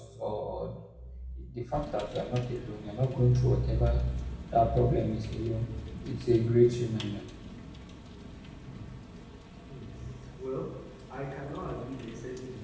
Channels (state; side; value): identical; both; correlation 1.00